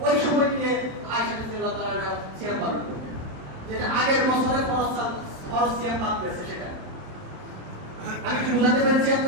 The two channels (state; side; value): late; left; 27 ms